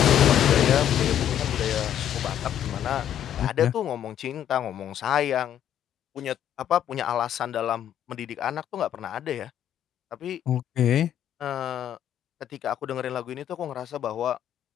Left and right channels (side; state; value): right; quieter; 10.4 dB